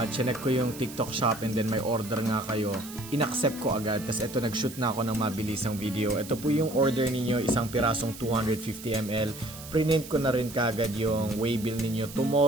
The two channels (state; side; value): noise; right; hiss, 14 dB below the sound